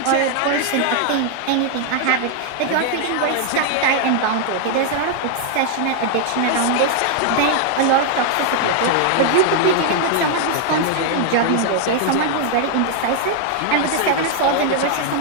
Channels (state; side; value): different; both; correlation 0.00